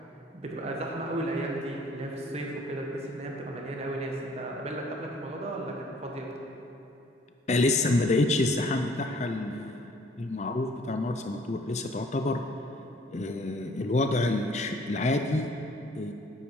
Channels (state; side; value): normal; both; correlation 0.58